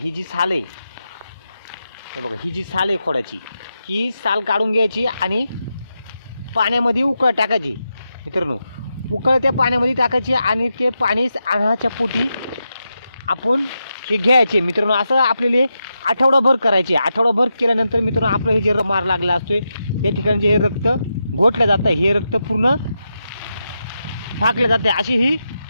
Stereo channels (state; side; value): inverted; both; correlation -0.87